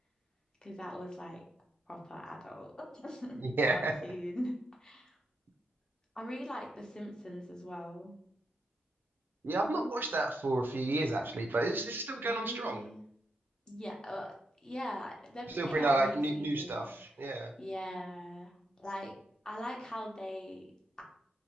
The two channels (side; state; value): both; normal; correlation 0.83